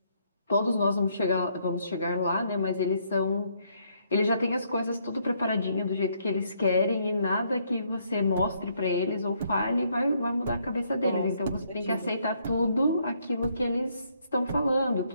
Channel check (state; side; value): inverted; both; correlation -0.71